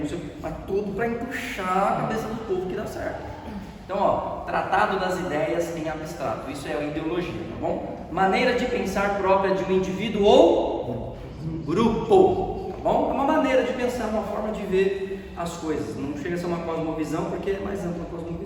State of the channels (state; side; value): identical; both; correlation 1.00